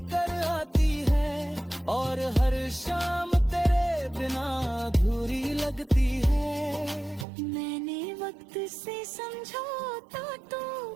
आती है, और हर शाम तेरे बिना अधूरी लगती है। मैंने वक्त से समझौता तो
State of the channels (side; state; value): left; drops out; at 7.2 s